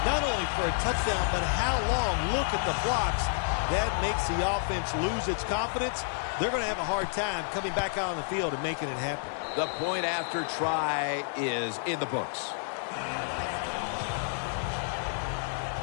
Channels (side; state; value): right; silent; digital silence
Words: not only for a touchdown, but how long? Look at the blocks. That makes the offense lose its confidence. They're going to have a hard time coming back out on the field and making it happen. The point after try is in the books.